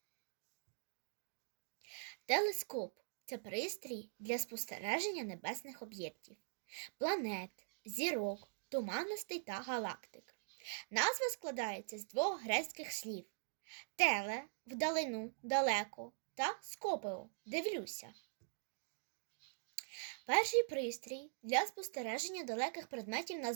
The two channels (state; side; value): silent; left; digital silence